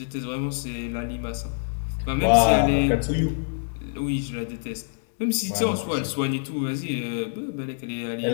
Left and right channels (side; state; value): right; silent; 59 dB below the other